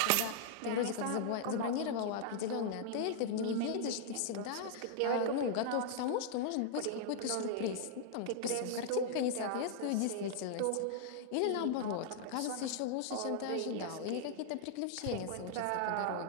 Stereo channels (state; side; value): different; both; correlation -0.01